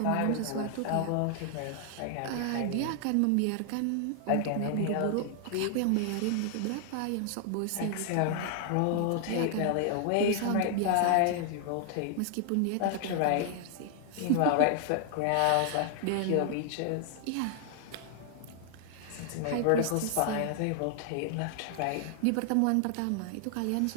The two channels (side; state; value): both; different; correlation 0.00